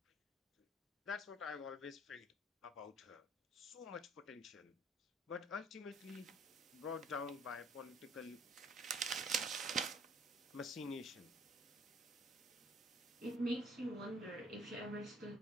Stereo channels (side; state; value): both; normal; correlation 0.57